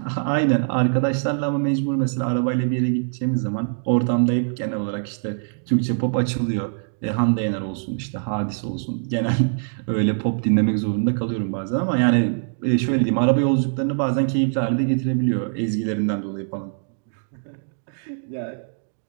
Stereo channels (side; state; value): left; silent; digital silence